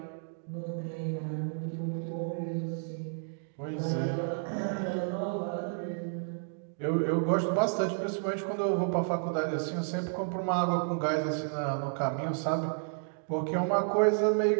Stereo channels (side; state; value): left; silent; digital silence